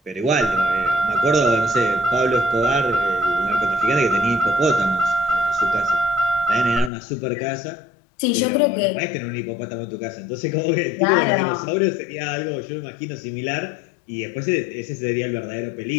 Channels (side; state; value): right; drops out; at 6.9 s